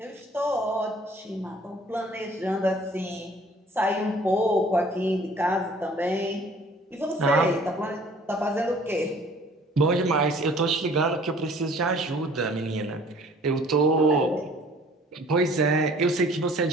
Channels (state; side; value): normal; both; correlation 0.53